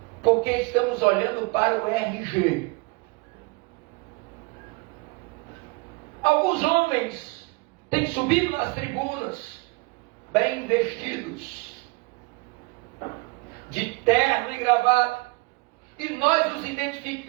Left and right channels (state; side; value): quieter; left; 26.7 dB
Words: porque estamos olhando para o RG. Alguns homens têm subido nas tribunas, bem vestidos, de terno e gravata, e nós os